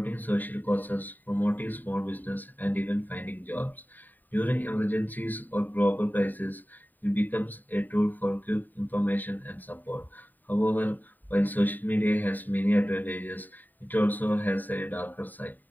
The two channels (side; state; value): right; late; 0.088 ms